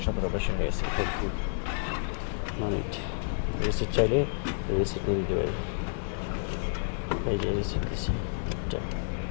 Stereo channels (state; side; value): silent; right; digital silence